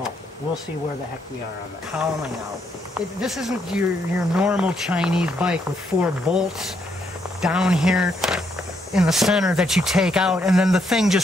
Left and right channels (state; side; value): normal; both; correlation 0.75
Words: we'll see where the heck we are on the cowling out. This isn't your normal Chinese bike with 4 bolts down here in the center that you take out and then the thing